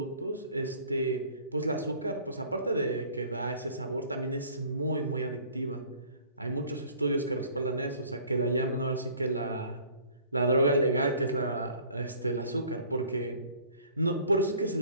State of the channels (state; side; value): inverted; both; correlation -0.52